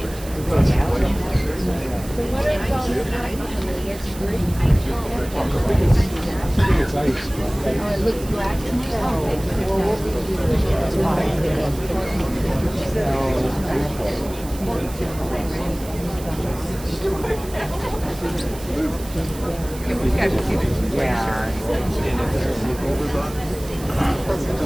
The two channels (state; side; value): noise; right; hiss, 16 dB below the sound